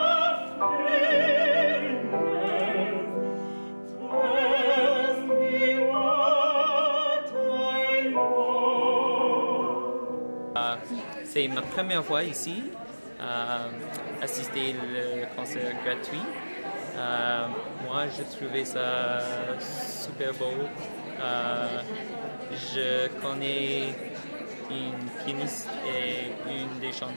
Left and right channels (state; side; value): inverted; both; correlation -1.00